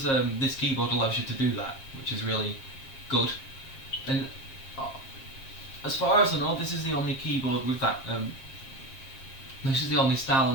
this keyboard allows you to do that, which is really good. And as far as I know, this is the only keyboard with that. This is the only style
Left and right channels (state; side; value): late; right; 7.5 ms